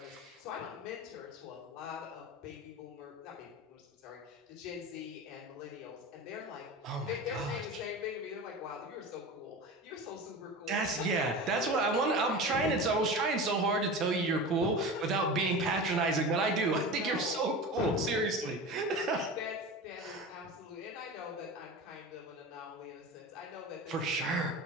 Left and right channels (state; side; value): normal; both; correlation 0.30